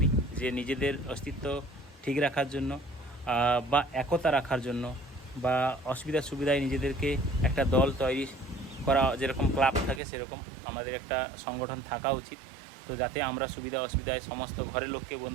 যে নিজেদের অস্তিত্ব ঠিক রাখার জন্য বা একতা রাখার জন্য বা অসুবিধা সুবিধায় নিজেদেরকে একটা দল তৈরি করা, যেরকম ক্লাব থাকে সেরকম আমাদের একটা সংগঠন থাকা উচিত। তো যাতে আমরা সুবিধা অসুবিধায় সমস্ত ঘরের লোককে,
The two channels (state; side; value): drops out; left; at 10.0 s